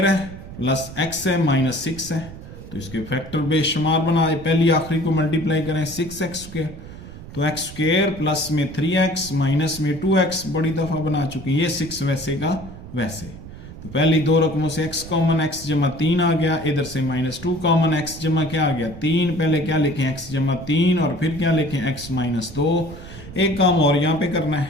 है प्लस x है -6 है, तो इसके फैक्टर बेशुमार बनाए, पहली आखिरी को मल्टीप्लाई करें 6x स्क्वायर, तो x स्क्वायर प्लस में 3x माइनस में 2x बड़ी दफा बना चुके हैं, ये 6 वैसे का वैसे, तो पहली दो रकमों से x कॉमन, x जमा 3 आ गया, इधर से -2 कॉमन, x जमा क्या आ गया 3, पहले क्या लिखें x जमा 3 और फिर क्या लिखें x -2। एक काम और यहाँ पे करना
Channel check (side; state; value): right; noise; rumble, 14 dB below the sound